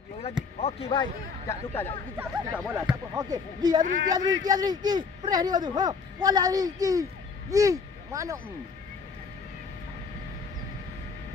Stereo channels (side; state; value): right; quieter; 5.2 dB